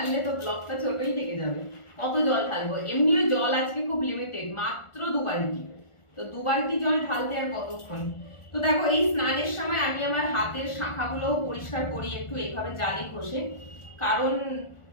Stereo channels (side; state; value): right; late; 1.4 ms